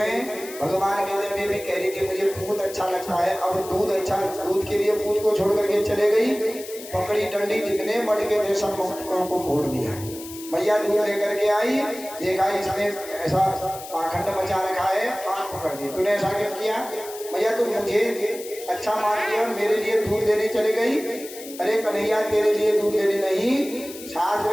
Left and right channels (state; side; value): noise; left; hiss, 14 dB below the sound